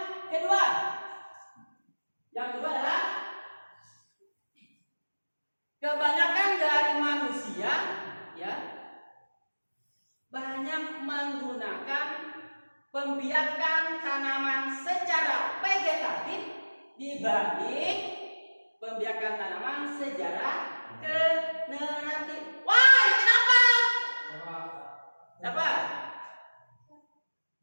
kedua. Yang kedua adalah kebanyakan dari manusia ya banyak menggunakan pembiakan tanaman secara vegetatif dibanding pembiakan tanaman secara generatif. Wah, kenapa? Siapa?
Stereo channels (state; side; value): inverted; both; correlation -1.00